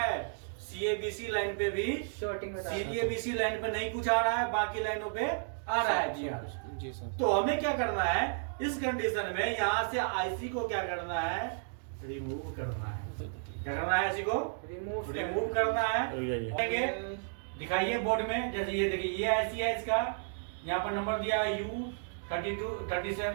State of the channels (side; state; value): left; silent; digital silence